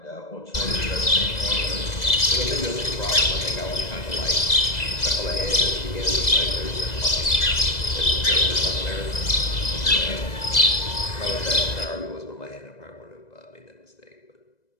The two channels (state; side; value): late; right; 2.0 ms